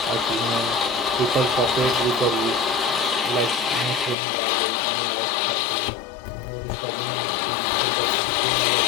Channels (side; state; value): right; drops out; at 4.2 s